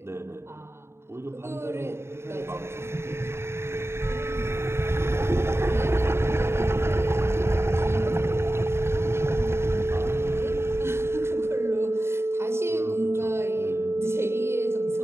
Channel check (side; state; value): left; late; 0.12 ms